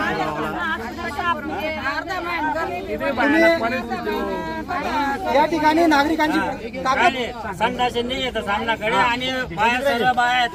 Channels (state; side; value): identical; both; correlation 1.00